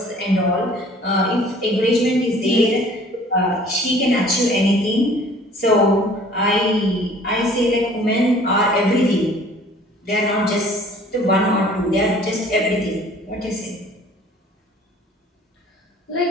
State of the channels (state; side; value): normal; both; correlation 0.52